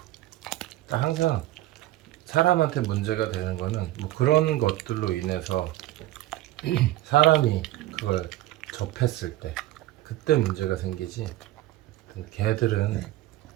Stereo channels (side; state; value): left; quieter; 15.4 dB